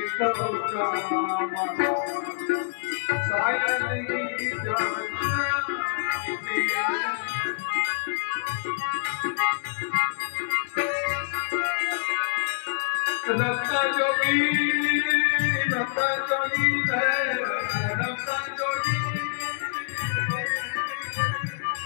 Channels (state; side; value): silent; right; digital silence